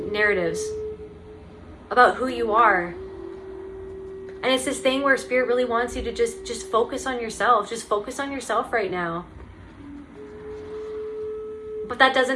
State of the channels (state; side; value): identical; both; correlation 1.00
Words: narratives about who you are. And it's this thing where Spirit really wants you to just focus on yourself. Just focus on yourself right now. But that